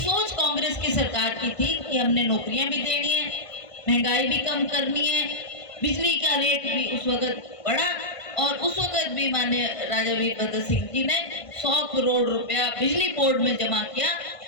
कांग्रेस की सरकार की थी कि हमने नौकरियां भी देनी है, महंगाई भी कम करनी है, बिजली का रेट भी उस वक्त बढ़ा और उस वक्त भी माननीय राजा वीरभद्र सिंह जी ने 100 करोड़ रुपया बिजली बोर्ड में जमा किया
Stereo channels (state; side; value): late; right; 1.5 ms